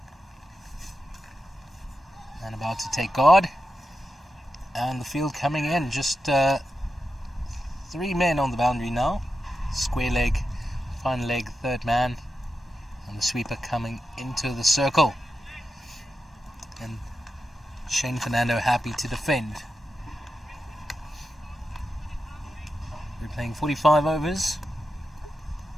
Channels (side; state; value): both; normal; correlation 0.89